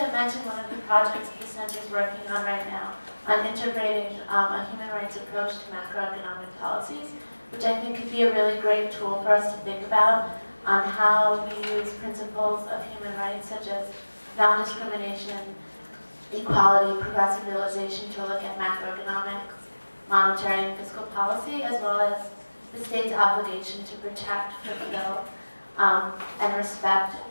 mention one of the projects the Center is working on right now on integrating a human rights approach to macroeconomic policies, which I think could be a really great tool for us to think about on how we use principles of human rights such as non-discrimination, equality, progressive realization to look at macroeconomics, monetary and fiscal policy, as well as the state's obligation to protect, fulfill, and respect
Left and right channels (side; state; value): both; inverted; correlation -1.00